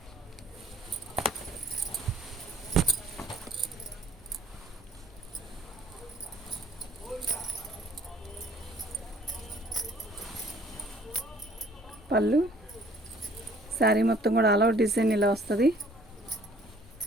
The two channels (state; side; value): normal; both; correlation 0.56